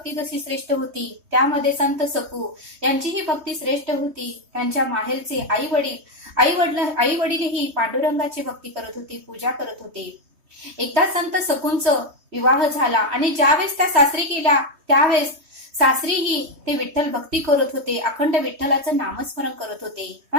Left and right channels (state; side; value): late; left; 3.2 ms